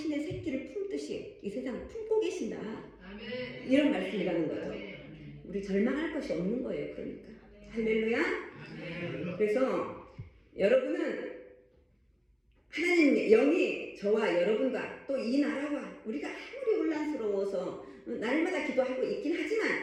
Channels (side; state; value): both; identical; correlation 1.00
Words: 새끼를 품듯이 이 세상을 품고 계신다. 아멘. 이런 말씀이라는 거죠. 아멘. 우리 절망할 것이 없는 거예요. 그러니까. 할렐루야. 아멘. 그래서 여러분은 하나님의 영이 저와 여러분과 또 이 나라와 우리가 아무리 혼란스러워서 날마다 기도하고 있긴 하지만